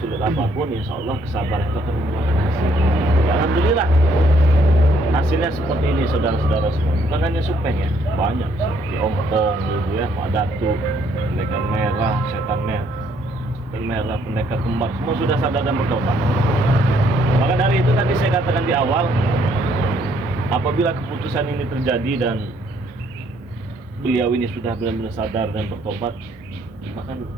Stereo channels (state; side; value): normal; both; correlation 0.67